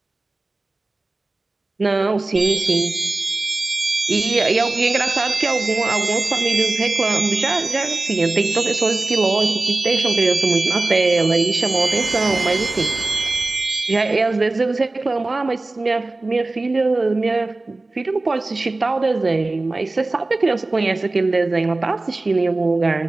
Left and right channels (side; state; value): left; quieter; 3.1 dB